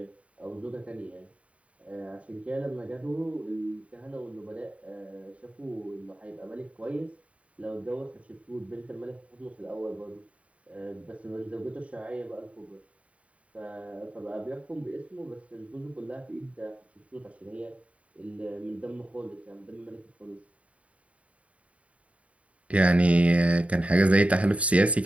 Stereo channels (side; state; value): left; late; 0.066 ms